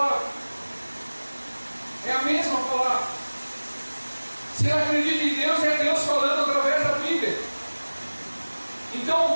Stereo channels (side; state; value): both; inverted; correlation -1.00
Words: É a mesma palavra. Se ela acredita em Deus, é Deus falando através da Bíblia.